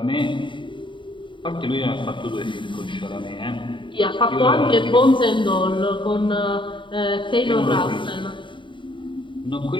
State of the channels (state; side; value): late; right; 0.24 ms